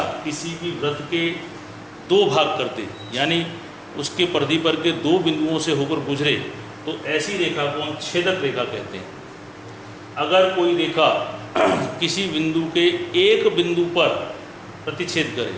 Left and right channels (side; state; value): both; identical; correlation 1.00